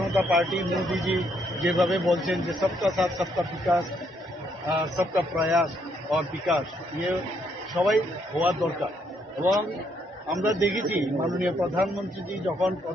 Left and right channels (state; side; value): normal; both; correlation 0.73